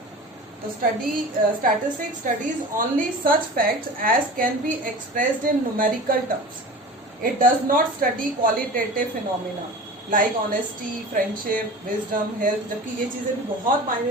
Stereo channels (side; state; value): both; normal; correlation 0.35